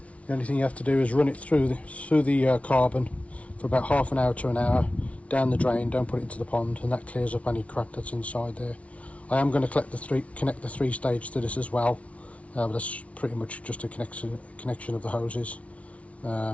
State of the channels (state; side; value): late; right; 0.064 ms